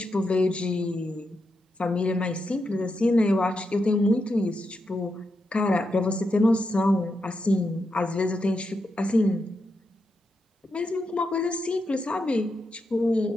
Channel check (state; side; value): normal; both; correlation 0.85